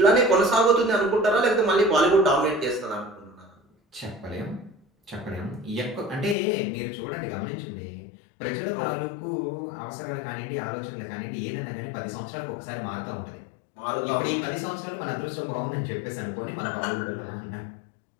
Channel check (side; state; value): right; drops out; at 6.4 s